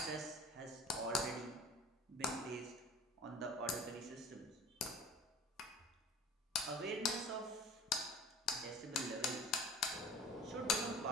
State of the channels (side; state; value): both; normal; correlation 0.42